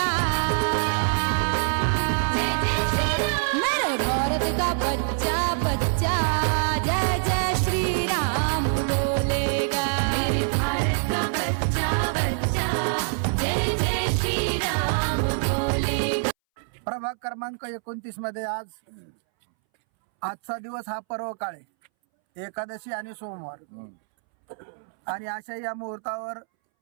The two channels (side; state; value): left; silent; 62 dB below the other